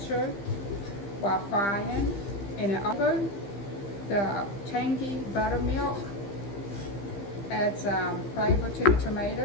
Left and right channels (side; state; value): right; late; 15 ms